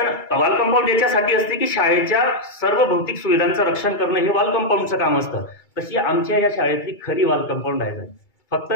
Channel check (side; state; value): right; late; 2.3 ms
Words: वॉल कंपाऊंड याच्यासाठी असते की शाळेच्या सर्व भौतिक सुविधांचं रक्षण करणं हे वॉल कंपाऊंडचं काम असतं. तशी आमच्या या शाळेतली खरी वॉल कंपाऊंड आहे. फक्त